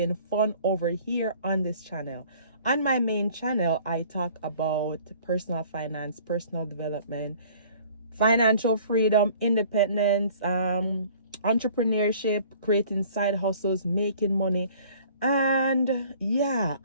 fun over here on this channel. On my main channel, I talk about personal finance, personal development, financial freedom, independence, entrepreneurship, creating side hustles, making money, and yeah,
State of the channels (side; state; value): both; inverted; correlation -0.52